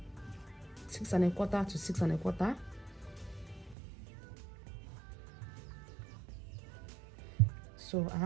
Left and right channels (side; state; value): left; drops out; at 3.8 s